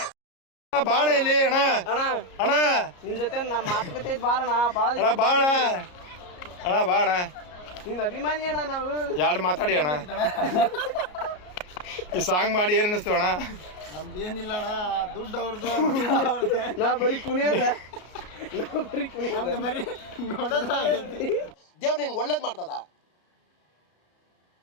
ಬಾಣ ಇಲ್ಲಿ ಅಣ್ಣ. ಅಣ್ಣ ನಿನ್ ಜೊತೆ ನಮ್ಮ ಮಾತುಕತೆ ಇದ್ ಬಾರಣ. ಅಣ್ಣ ಬಾಣ, ಅಣ್ಣ ಬಾಣ. ನಿನ್ ಅಭಿಮಾನಿ ಅಣ್ಣ ನಾವು. ಎರಡು ಮಾತಾಡಿ ಅಣ್ಣ. ಈ ಸಾಂಗ್ ಮಾಡಿ ಏನ್ ಅನಿಸ್ತು ಅಣ್ಣ? ನಮ್ದೇನಿಲ್ಲ ಅಣ್ಣ, ದುಡ್ಡು ಅವ್ರದ್ದು. ನಾ ಬರೀ ಕುಣಿಯೋದ, ದೇವ್ರು ನಿನ್ಗೆ ಒಳ್ಳೇದ್ ಮಾಡ್ತದ.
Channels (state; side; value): late; right; 33 ms